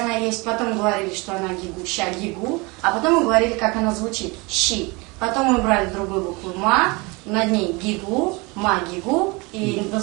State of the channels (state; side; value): quieter; left; 26.5 dB